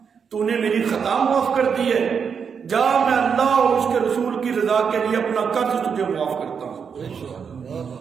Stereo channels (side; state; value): left; quieter; 6.5 dB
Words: تو نے میری خطا معاف کر دی ہے، جا میں اللہ اور اس کے رسول کی رضا کے لیے اپنا قرض تجھے معاف کرتا ہوں۔